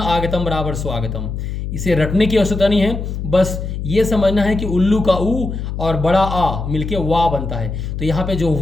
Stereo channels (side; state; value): left; noise; hum, 5 dB below the sound